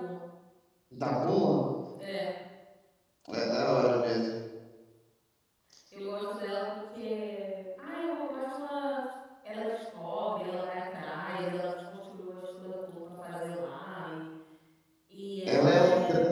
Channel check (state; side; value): identical; both; correlation 1.00